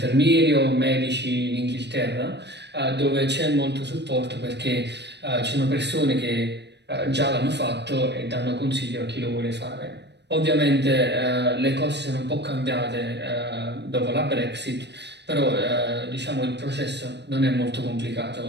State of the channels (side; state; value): left; late; 0.50 ms